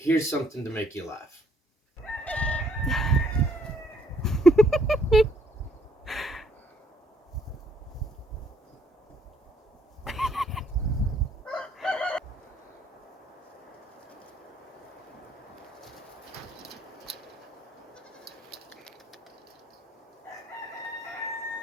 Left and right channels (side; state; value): both; normal; correlation 0.67